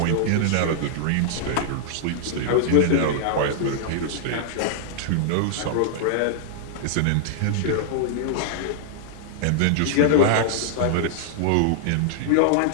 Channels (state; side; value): different; both; correlation -0.01